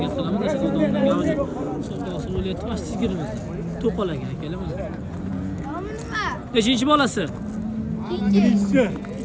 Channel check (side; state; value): both; identical; correlation 1.00